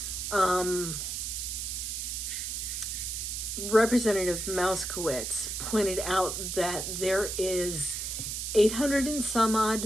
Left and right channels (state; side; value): noise; right; hiss, 3 dB below the sound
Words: Representative Mouskowitz pointed out that there is $800 and some